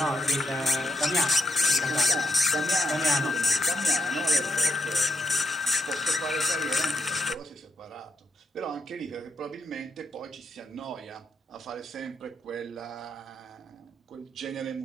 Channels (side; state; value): both; normal; correlation 0.80